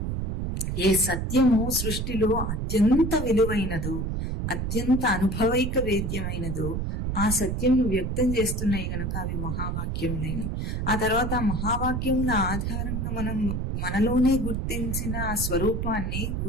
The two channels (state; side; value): noise; right; rumble, 2 dB below the sound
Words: ఏ సత్యము సృష్టిలో అత్యంత విలువైనదో, అత్యంత అనుభవైక వేద్యమైనదో ఆ సత్యంను వ్యక్తం చేస్తున్నాయి కనుక అవి మహావాక్యములేని. ఆ తర్వాత ఆ మహావాక్యముల ఆధారంగా మనం మనలోనే గుర్తించిన ఆ స్వరూపాన్ని